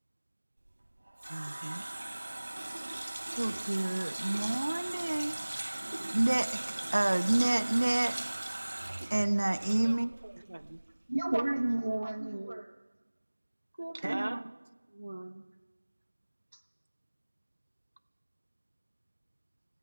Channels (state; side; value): inverted; both; correlation -1.00